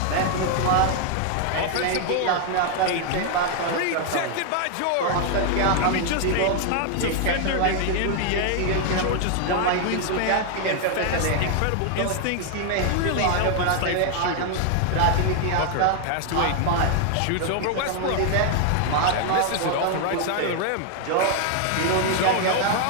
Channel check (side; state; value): both; different; correlation 0.00